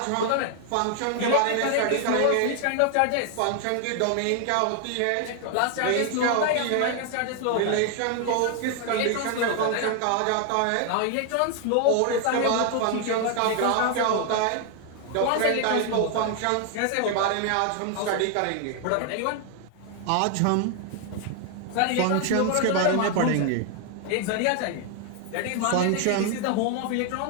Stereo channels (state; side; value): different; both; correlation 0.00